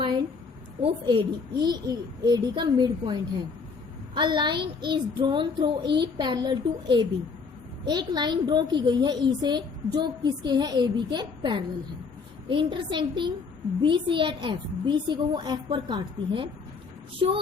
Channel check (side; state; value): right; quieter; 5.0 dB